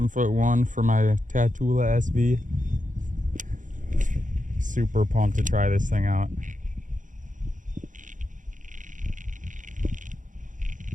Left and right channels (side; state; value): left; late; 0.37 ms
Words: for my Tatula SV. Super pumped to try this thing out.